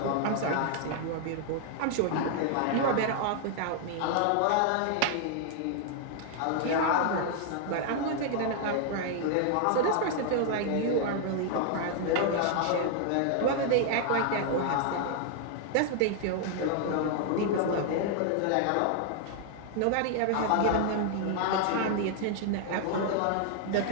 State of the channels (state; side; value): different; both; correlation 0.00